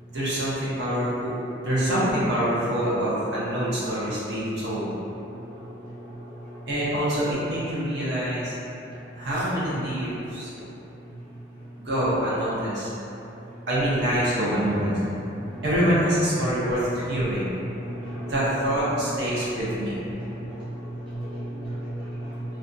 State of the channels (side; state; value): both; normal; correlation 0.46